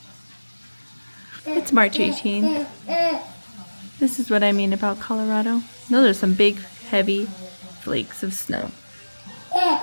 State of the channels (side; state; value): both; inverted; correlation -1.00